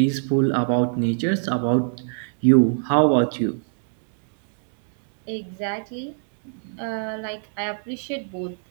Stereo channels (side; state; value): left; silent; 62 dB below the other